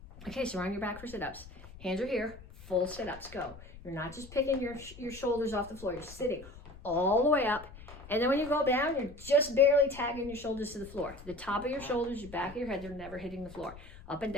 Okay, so we're on your back for sit-ups. Hands are here. Full sit-ups. Go. You're not just picking your shoulders off the floor. You're sitting all the way up. And then when you go down, you're just barely tagging your shoulders to the floor. The top of your shoulders, your back of your head, they're never hitting the floor. Up and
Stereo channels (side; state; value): left; noise; rumble, 17 dB below the sound